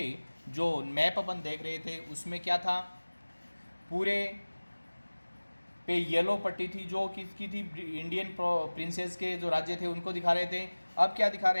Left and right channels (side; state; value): both; inverted; correlation -1.00